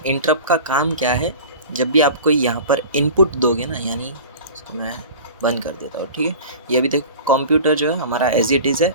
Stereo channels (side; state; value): both; inverted; correlation -0.37